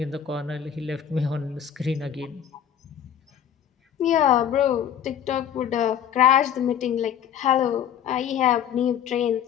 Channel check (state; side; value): quieter; right; 9.1 dB